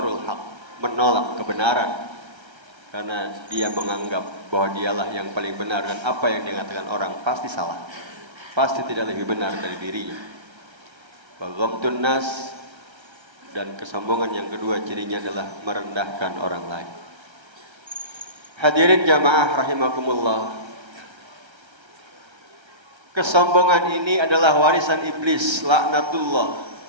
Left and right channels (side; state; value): left; late; 1.3 ms